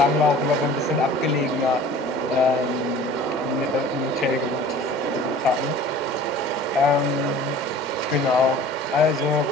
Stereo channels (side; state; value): both; normal; correlation 0.45